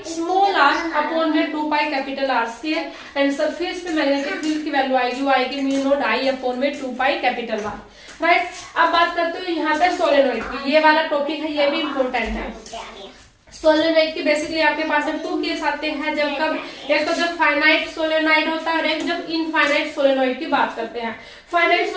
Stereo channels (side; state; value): both; identical; correlation 1.00